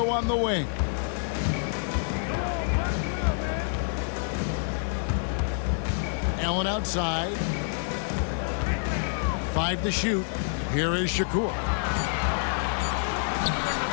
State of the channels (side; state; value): right; silent; 60 dB below the other